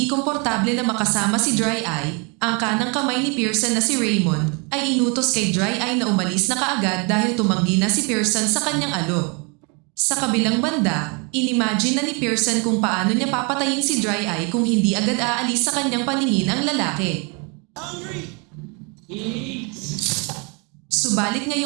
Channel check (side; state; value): left; quieter; 32.3 dB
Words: komportable na makasama si Dry Eye, ang kanang kamay ni Pearson na si Raymond ay inutos kay Dry Eye na umalis na kaagad dahil tumanggi na si Pearson sa kanyang alok. Sa kabilang banda, inimagine na ni Pearson kung paano niya papatayin si Dry Eye kung hindi agad aalis sa kanyang paningin ang lalaki. Hungry! Eat! Subalit